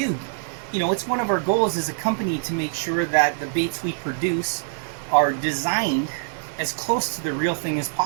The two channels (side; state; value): left; silent; digital silence